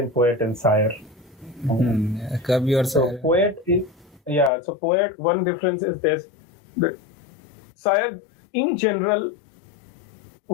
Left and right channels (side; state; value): right; drops out; at 4.5 s